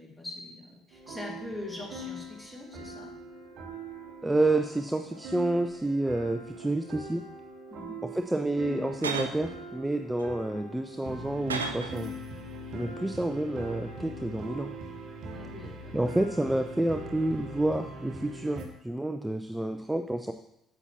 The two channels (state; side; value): normal; both; correlation 0.88